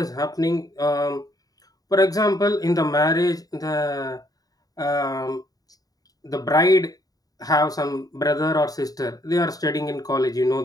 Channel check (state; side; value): late; right; 0.18 ms